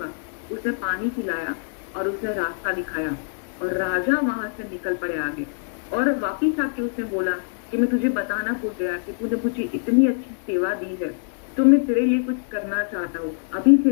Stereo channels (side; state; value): right; silent; digital silence